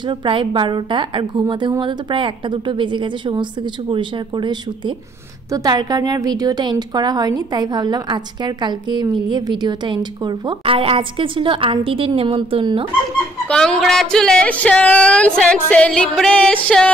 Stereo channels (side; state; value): both; normal; correlation 0.65